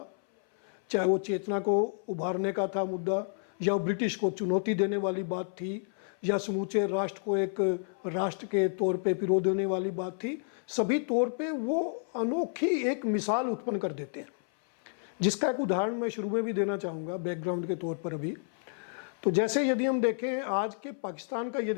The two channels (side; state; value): right; silent; 58 dB below the other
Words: चाहे वो चेतना को उभारने का था मुद्दा, या ब्रिटिश को चुनौती देने वाली बात थी, या समूचे राष्ट्र को एक राष्ट्र के तौर पे पिरो देने वाली बात थी, सभी तौर पे वो अनोखी एक मिसाल उत्पन्न कर देते हैं, जिसका एक उदाहरण मैं शुरू में भी देना चाहूँगा बैकग्राउंड के तौर पर अभी। तो जैसे यदि हम देखें आज के पाकिस्तान का